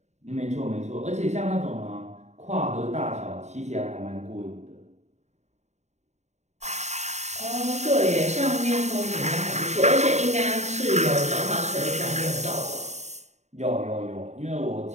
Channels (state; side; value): late; left; 0.33 ms